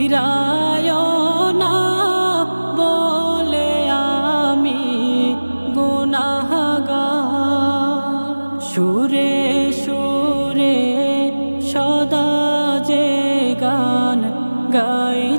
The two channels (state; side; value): inverted; both; correlation -1.00